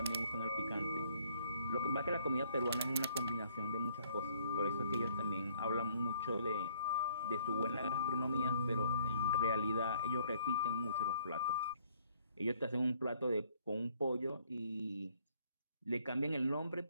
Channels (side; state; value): both; inverted; correlation -0.63